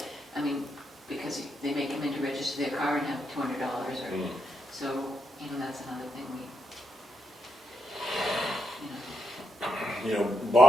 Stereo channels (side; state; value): both; normal; correlation 0.81